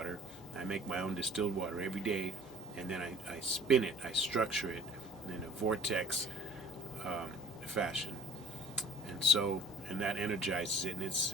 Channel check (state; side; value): normal; both; correlation 0.48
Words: I make my own distilled water every day, and then I spin it, I structure it in a vortex fashion. And so, and that energizes it, and